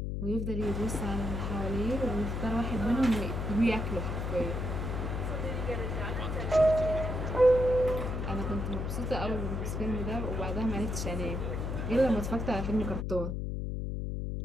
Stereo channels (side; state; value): left; noise; hum, 2 dB below the sound